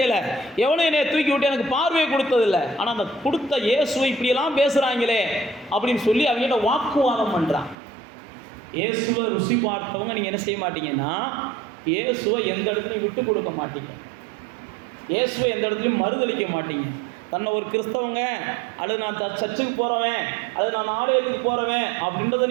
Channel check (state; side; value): drops out; left; at 7.8 s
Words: எவனும் என்னை தூக்கி விட்டு எனக்கு பார்வையை கொடுத்ததில்லை. ஆனால் அந்த கொடுத்த இயேசுவை இப்படியெல்லாம் பேசுகிறாங்களே அப்படின்னு சொல்லி அவங்ககிட்ட வாக்குவாதம் பண்ணுறான். இயேசுவை ருசி பார்த்தவங்க நீங்கள் என்ன செய்ய மாட்டீங்கன்னா, இயேசுவை எந்த இடத்துலையும் விட்டு கொடுக்க மாட்டீங்க, இயேசுவை எந்த இடத்துலையும் மறுதளிக்க மாட்டீங்க. தன்னை ஒரு கிறிஸ்தவங்க அல்லது நான் சர்ச்சுக்கு போகிறவன் அல்லது நான் ஆலயத்துக்கு போகிறவன் அப்படின்றத